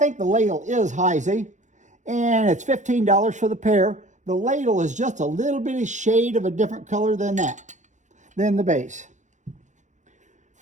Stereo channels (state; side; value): late; left; 0.35 ms